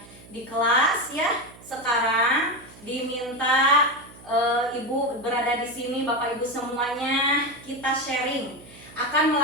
di kelas ya. Sekarang diminta Ibu berada di sini, Bapak Ibu semuanya, kita sharing akan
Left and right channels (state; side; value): noise; right; hum, 21 dB below the sound